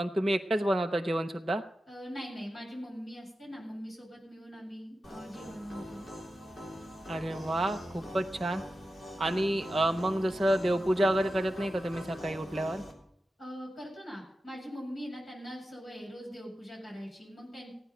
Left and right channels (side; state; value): both; normal; correlation 0.92